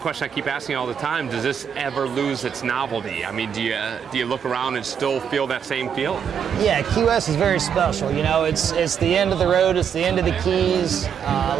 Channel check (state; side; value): quieter; left; 7.8 dB